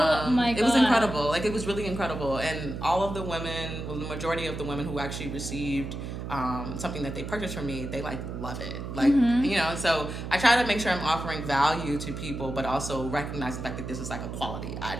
my God. It was incredible. Like, it was really incredible. And all of the women, well, the majority of the women who actually received something that they purchased from me, they like love it. Like, you know, and so I try to make sure I'm offering value to people, but also recognize the fact that this is like a quality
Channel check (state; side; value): noise; right; hum, 7 dB below the sound